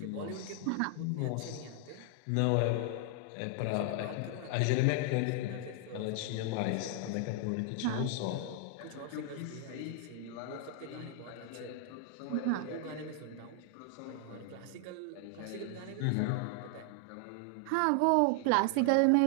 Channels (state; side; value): different; both; correlation 0.00